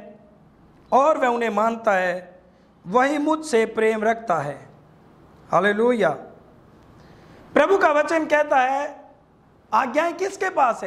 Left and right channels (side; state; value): both; identical; correlation 1.00